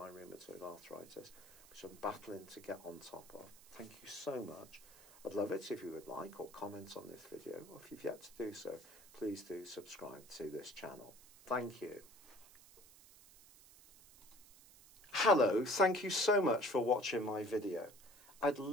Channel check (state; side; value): noise; right; hiss, 22 dB below the sound